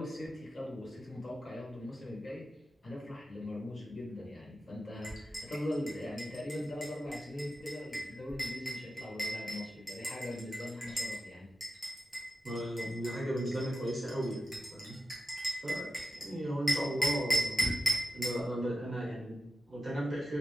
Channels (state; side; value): normal; both; correlation 0.91